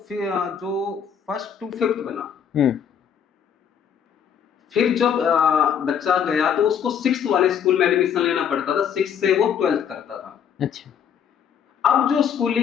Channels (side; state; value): right; quieter; 8.0 dB